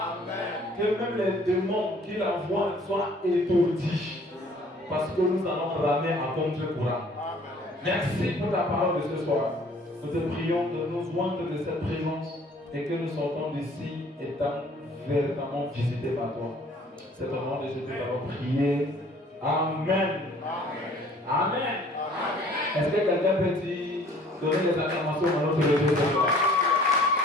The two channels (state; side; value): normal; both; correlation 0.55